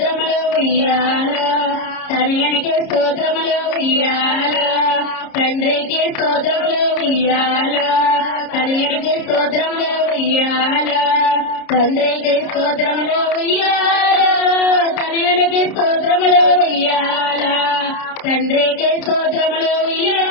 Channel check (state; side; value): late; right; 30 ms